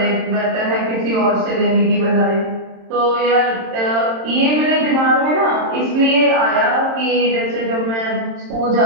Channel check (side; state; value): left; late; 27 ms